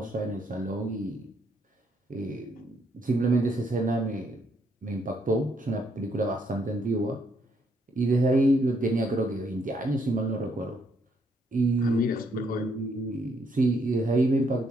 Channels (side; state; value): both; normal; correlation 0.72